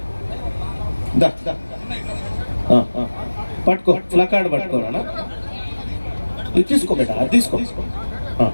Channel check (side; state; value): both; inverted; correlation -1.00